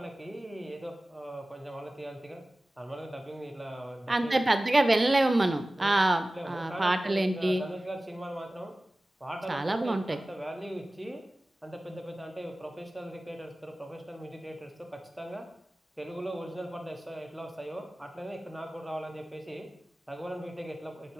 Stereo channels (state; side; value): normal; both; correlation 0.97